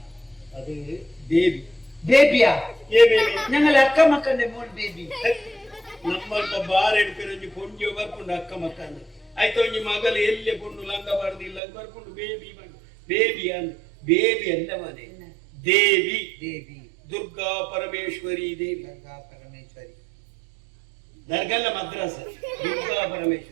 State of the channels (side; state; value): left; drops out; at 11.6 s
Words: അത് ബേബി ಬೇಬಿಯಾ ഏ ബേബി ഞങ്ങൾ അക്ക മക്കന്റെ മോൻ ಬೇಬಿ ನಮ್ಮಂತ ಬಾರ್ ಹಿಡ್ಕೊಂಡು ಪೊಂಜಿ ಬರ್ಕೊಂಡು ಅಕ್ಕ ಮಕ್ಕಂದು ಆಯ್ತು ಒಂಜಿ ಮಗಲು ಎಲ್ಲೆ ಪೊಂಡು ಲಂಗ ಬಾರ್ದಿಲ್ಲ ಬರ್ಕೊಂಡು ಬೇಬಿ ಬಂದು ಬೇಬಿ ಅಂದ್ ಬೇಬಿ ಅಲ್ಲ ಮನೆ ದೇವಿ ದೇವಿ ದುರ್ಗಾ ಪರಮೇಶ್ವರಿ ದೇವಿ ಗಂಗಾ ಪರಮೇಶ್ವರಿ ದರ್ಗಲ್ಲ ಮದ್ರಾಸ ದುರ್ಗಾ